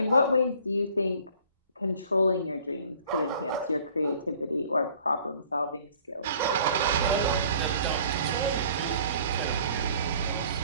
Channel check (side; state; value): both; inverted; correlation -0.54